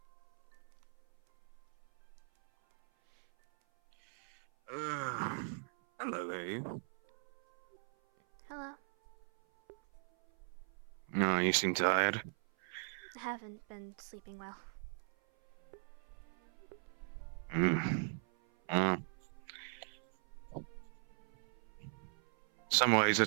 Hello there. Hello. No, you seem tired. I haven't been sleeping well. Some ways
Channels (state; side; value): silent; left; 51 dB below the other